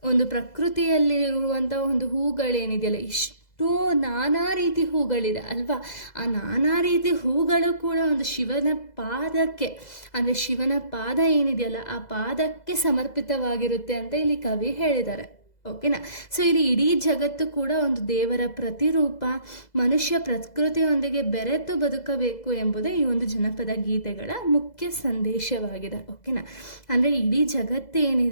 ಪ್ರಕೃತಿಯಲ್ಲಿರುವಂಥ ಒಂದು ಹೂಗಳೇನಿದೆಯಲ್ಲ, ಇಷ್ಟು ನಾನಾ ರೀತಿ ಹೂಗಳಿದೆ ಅಲ್ವಾ, ಆ ನಾನಾ ರೀತಿ ಹೂಗಳು ಕೂಡ ಒಂದು ಶಿವನ ಪಾದಕ್ಕೆ, ಅಂದರೆ ಶಿವನ ಪಾದ ಏನಿದೆಯಲ್ಲ ಆ ಪಾದಕ್ಕೆ ಸಮರ್ಪಿತವಾಗಿರುತ್ತೆ ಅಂತ ಇಲ್ಲಿ ಕವಿ ಹೇಳಿದ್ದಾರೆ, ಓಕೆನಾ. ಸೊ ಇಲ್ಲಿ ಇಡೀ ಜಗತ್ತು ಕೂಡ ಒಂದು ದೇವರ ಪ್ರತಿರೂಪ, ಮನುಷ್ಯ ಪ್ರಕೃತಿಯೊಂದಿಗೆ ಬೆರೆತು ಬದುಕಬೇಕು ಎಂಬುದೇ ಈ ಒಂದು ಜನಪದ ಗೀತೆಗಳ ಮುಖ್ಯ ಸಂದೇಶವಾಗಿದೆ, ಓಕೆನಾ. ಅಂದರೆ ಇಡೀ ಜಗತ್ತು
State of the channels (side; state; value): right; late; 2.0 ms